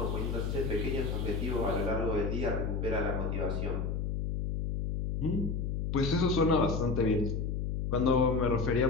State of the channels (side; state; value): left; noise; hum, 1 dB below the sound